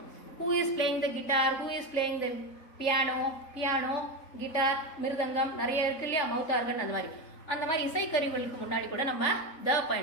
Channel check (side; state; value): right; late; 3.5 ms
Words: who is playing the guitar, who is playing the piano, guitar, mridangam நிறைய இருக்கு இல்லையா, மவுத் ஆர்கன், அந்த மாதிரி இசை கருவிகளுக்கு முன்னாடி கூட நம்ம the